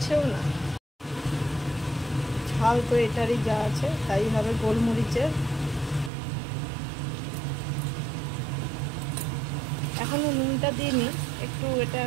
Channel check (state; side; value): drops out; left; at 6.1 s